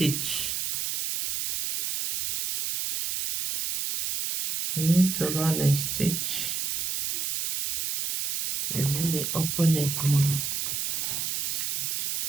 You need to run a stitch. And let me open it more.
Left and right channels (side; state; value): right; noise; hiss, 1 dB below the sound